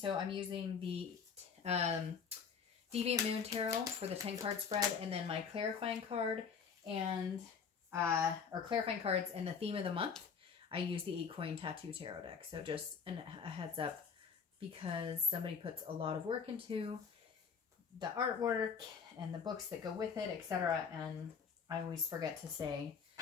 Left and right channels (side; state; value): right; quieter; 6.2 dB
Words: I'm using the Deviant Moon Tarot for the 10 card spread, and then my clarifying card and or clarifying cards and the theme of the month. I use the 8 coin tattoo tarot deck. So just a heads up, because somebody puts a lot of work into the artwork and the books that go with it, etc. And I always forget to say